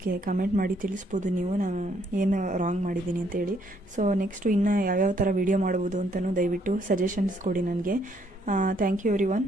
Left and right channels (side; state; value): both; normal; correlation 0.69